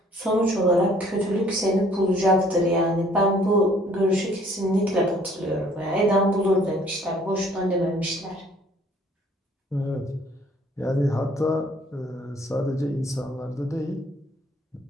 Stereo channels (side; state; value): both; normal; correlation 0.59